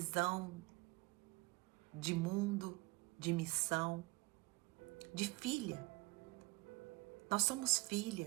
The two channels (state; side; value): quieter; left; 24.7 dB